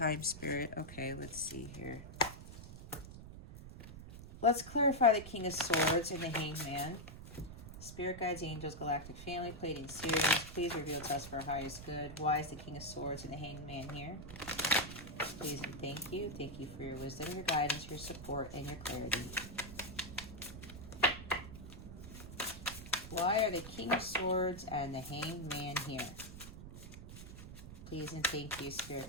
spirit. Okay, let's see here. Let's clarify the King of Swords and the Hanged Man. Spirit guides, angels, galactic family, Pleiadian series. Please reveal to us for our highest good. Why is the King of Swords and the Hanged Man here? Please and thank you. Thank you for your wisdom, your guidance, your support, and your clarity. Why are the King of Swords and the Hanged Man here? Please and thank you, Spirit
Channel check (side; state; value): right; noise; rumble, 12 dB below the sound